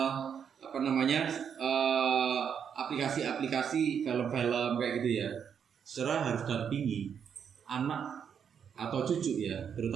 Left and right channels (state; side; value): quieter; left; 7.6 dB